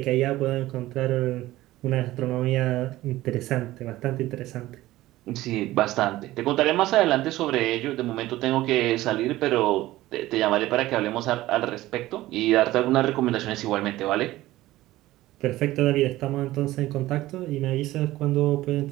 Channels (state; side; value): quieter; left; 16.6 dB